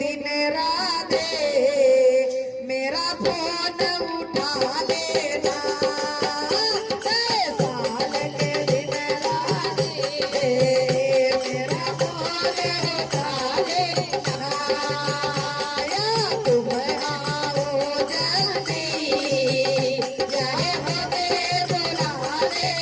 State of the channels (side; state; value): both; identical; correlation 1.00